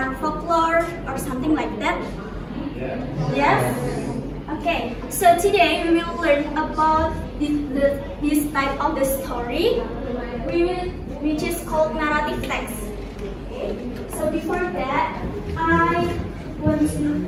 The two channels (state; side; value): identical; both; correlation 1.00